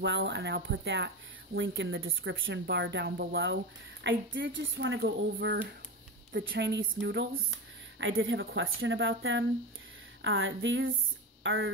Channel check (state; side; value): normal; both; correlation 0.20